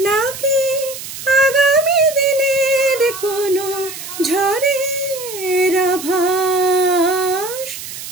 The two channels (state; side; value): noise; right; hiss, 10 dB below the sound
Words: আগামী দিনের কোনো ঝড়ের আভাস